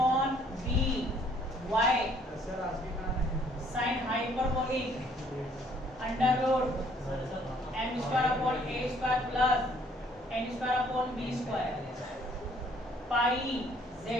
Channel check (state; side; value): normal; both; correlation 0.62